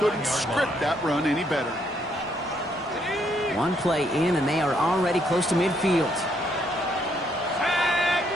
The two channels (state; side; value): normal; both; correlation 0.72